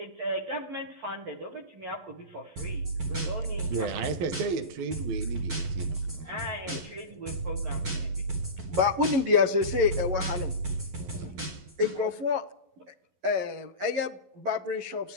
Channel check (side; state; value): left; late; 12 ms